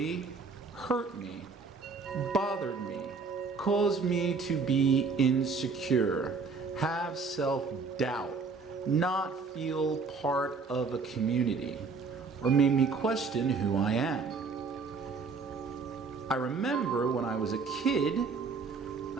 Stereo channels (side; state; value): left; quieter; 4.7 dB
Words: hurt me, bothered me, caused me to be insecure, have self-doubt, not feel part of a community, or made me question who I am. I remember when I was a kid,